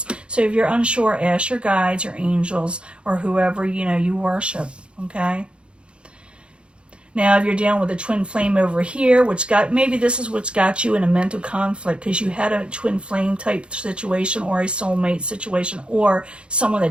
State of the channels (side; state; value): left; late; 0.057 ms